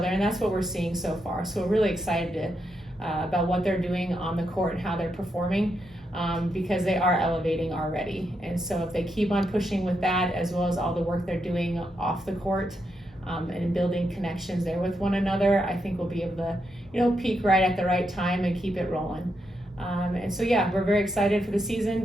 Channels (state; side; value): normal; both; correlation 0.82